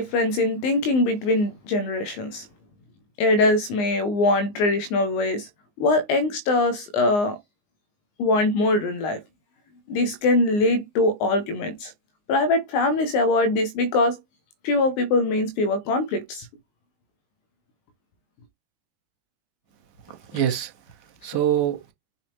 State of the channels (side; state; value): right; late; 19 ms